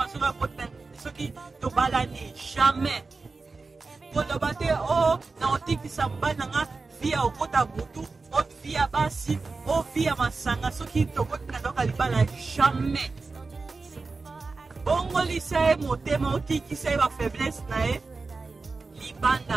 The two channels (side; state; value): left; quieter; 4.0 dB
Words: soki tobalani jamais koloba te o na otikisa mobali nanga via okota butu o via basi o via masanga soki tokoti na ndoka libala jamais bongolisa ye motema otikisa ye bafaiblesse na ye